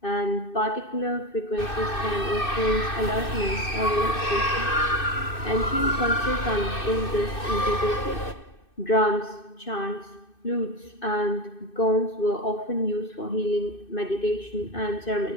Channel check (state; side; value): late; right; 2.6 ms